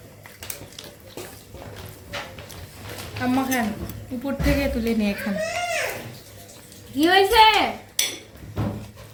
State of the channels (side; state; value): both; identical; correlation 1.00